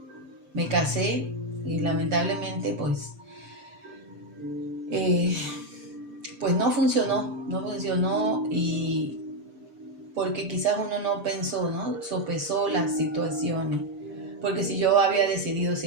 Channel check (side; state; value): left; late; 6.8 ms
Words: me casé y lamentablemente pues no funcionó y porque quizás uno no pensó, ¿no? Sopesó las situaciones. Porque si yo había decidido